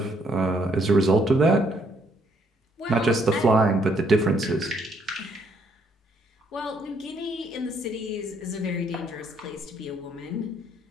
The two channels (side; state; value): both; normal; correlation 0.69